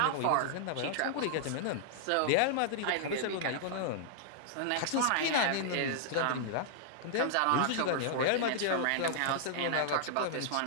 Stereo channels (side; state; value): both; different; correlation -0.01